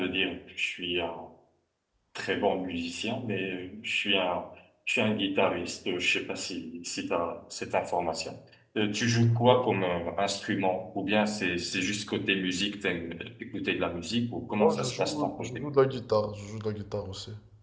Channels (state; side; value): identical; both; correlation 1.00